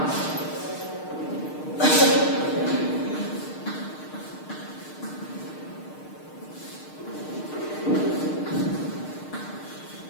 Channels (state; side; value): late; right; 6.6 ms